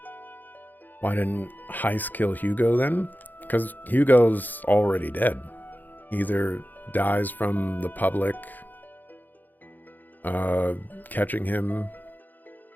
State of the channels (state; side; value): late; right; 0.086 ms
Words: Why didn't Heist kill Hugo then? Because Hugo's already dead. Either dies from the public catching him